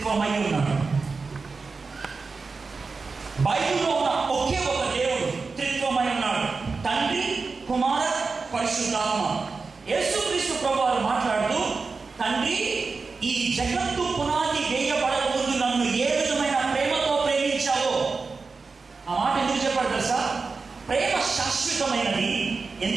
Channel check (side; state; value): left; quieter; 4.4 dB